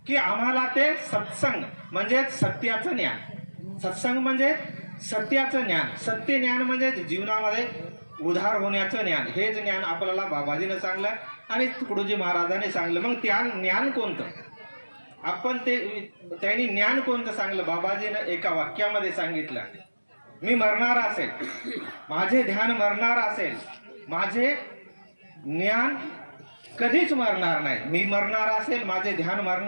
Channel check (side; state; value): both; inverted; correlation -1.00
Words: की आम्हाला ते सत्संग म्हणजे सत्याचं ज्ञान, सत्संग म्हणजे सत्याचं ज्ञान, सत्य ज्ञान म्हणजे जीवनामध्ये उधार होण्याचं ज्ञान, हे ज्ञान आपल्याला बाबाजीनं सांगलं आणि तुकडोजी महाराजांनी सांगलं. मग त्या ज्ञान कोणतं? आपण त्यांनी ज्ञान कोणतं सांगलं? बाबाजीनं एका वाक्यामध्ये सांगितलं, मी मरणार असेल, माझे ध्यान मरणार असेल, माझे ज्ञान कधीच मरणार नाही. मी मरणार असेल, माझे ध्यान